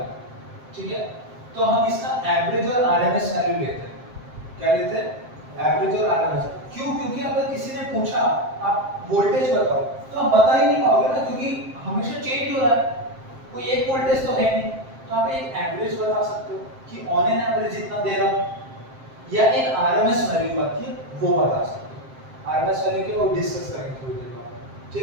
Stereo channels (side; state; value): left; late; 7.6 ms